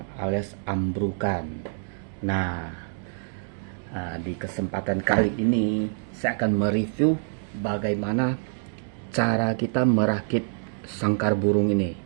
alias ambrukan. Nah, di kesempatan kali ini saya akan mereview bagaimana cara kita merakit sangkar burung ini.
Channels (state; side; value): silent; left; digital silence